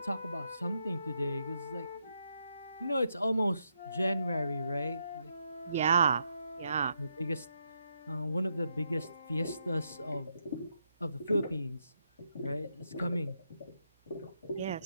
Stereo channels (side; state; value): both; inverted; correlation -0.81